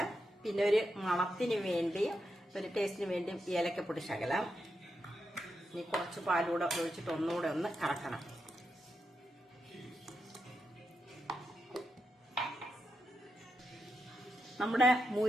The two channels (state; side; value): normal; both; correlation 0.86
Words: പിന്നെ ഒരു മണത്തിന് വേണ്ടി, ഒരു ടേസ്റ്റിന് വേണ്ടി ഏലക്കപ്പൊടി ശകലം. ഇനി കുറച്ച് പാലൂടെ ഒഴിച്ചിട്ട് ഒന്നുകൂടെ ഒന്ന് കറക്കണം. നമ്മുടെ